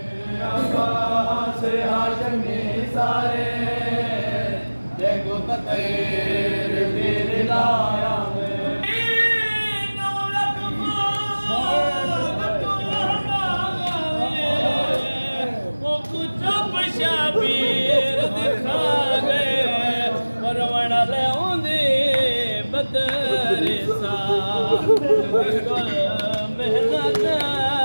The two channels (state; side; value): inverted; both; correlation -1.00